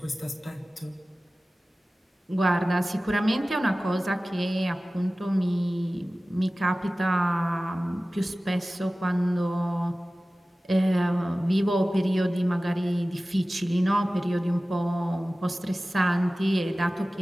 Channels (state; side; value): normal; both; correlation 0.97